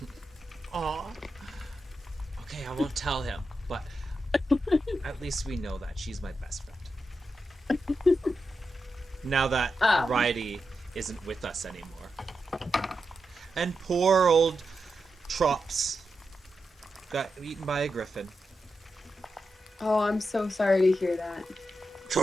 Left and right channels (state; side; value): normal; both; correlation 0.88